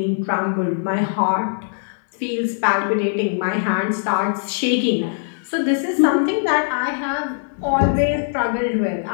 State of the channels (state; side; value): silent; right; digital silence